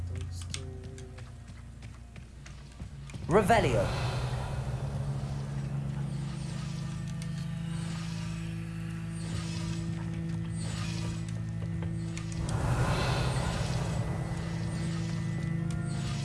Those two. Revelio!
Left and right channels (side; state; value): both; identical; correlation 1.00